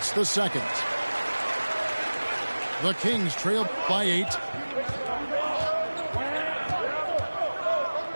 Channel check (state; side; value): inverted; both; correlation -1.00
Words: the second. The Kings trail by 8.